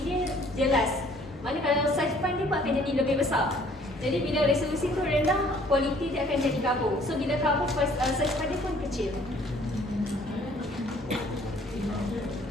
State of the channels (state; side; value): normal; both; correlation 0.57